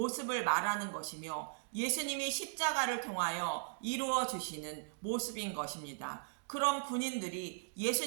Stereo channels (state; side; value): silent; left; digital silence